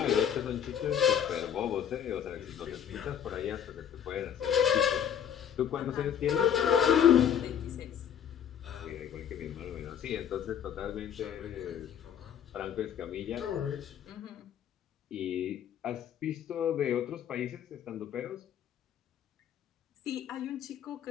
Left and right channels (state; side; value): quieter; right; 8.9 dB